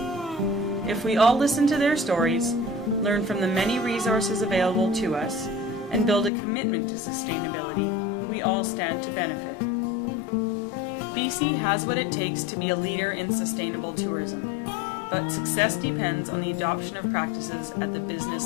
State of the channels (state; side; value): drops out; right; at 6.3 s